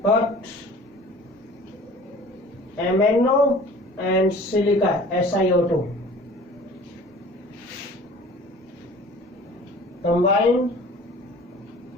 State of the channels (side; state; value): both; normal; correlation 0.45